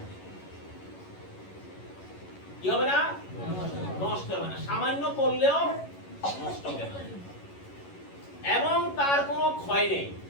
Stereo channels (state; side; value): late; right; 11 ms